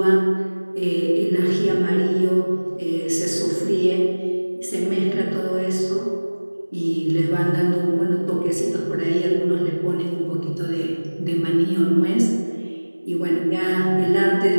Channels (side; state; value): both; inverted; correlation -1.00